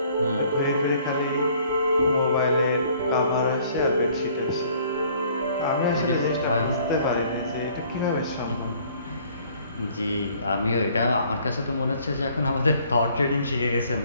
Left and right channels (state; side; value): inverted; both; correlation -0.59